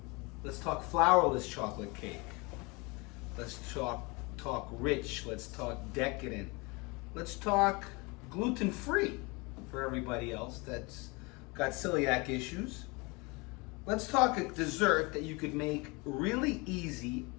Let's talk flourless chocolate cake. Let's talk rich. Let's talk decadent. Let's talk gluten-free for everybody else that's got celiac issues. Let's talk a dessert that you could make really easy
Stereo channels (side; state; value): right; quieter; 27.0 dB